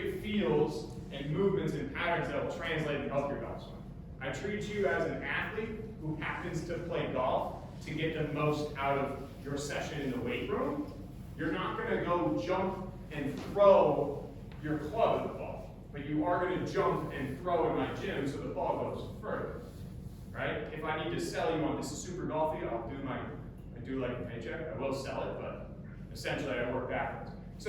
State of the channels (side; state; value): both; identical; correlation 1.00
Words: fields and movements and patterns that will translate and help your golf swing. I treat you as an athlete who happens to play golf to get the most out of your session in the weight room. You're not going to go jump and throw your club at the ball, but you are going to jump and throw in my gym so the ball goes further, right? If I need to sell you on this is super golfy, I do like a paycheck. I will sell it, but essentially I work backwards.